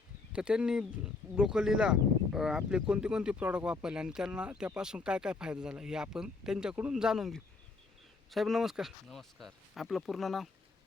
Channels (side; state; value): right; quieter; 4.0 dB